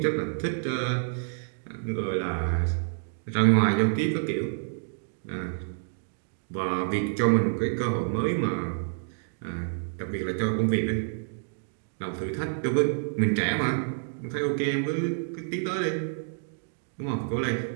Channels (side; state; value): left; silent; digital silence